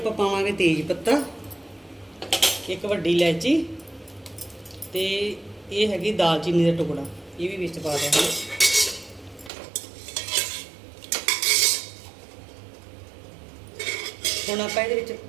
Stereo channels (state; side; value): drops out; left; at 9.5 s